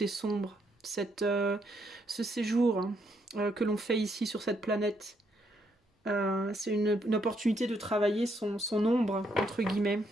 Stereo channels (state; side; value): normal; both; correlation 0.74